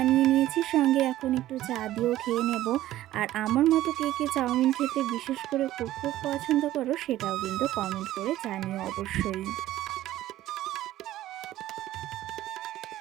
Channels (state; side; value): quieter; left; 14.4 dB